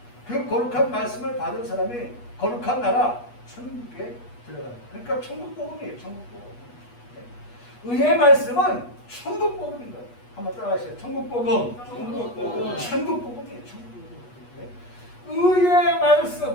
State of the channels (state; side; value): late; right; 8.3 ms